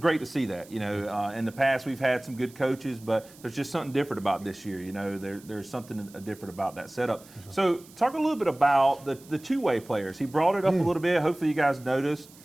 to see that. You know, in the past we've had some good coaches, but there's just something different about this year. You know, there's something different about that setup. So talk a little bit about the two-way players. He brought it up a little bit. Hopefully you guys noticed.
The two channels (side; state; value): right; noise; hiss, 23 dB below the sound